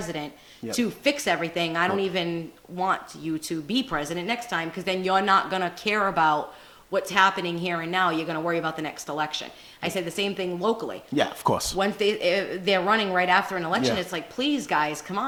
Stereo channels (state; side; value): identical; both; correlation 1.00